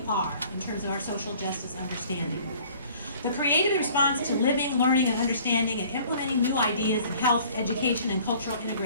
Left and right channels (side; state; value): both; inverted; correlation -0.53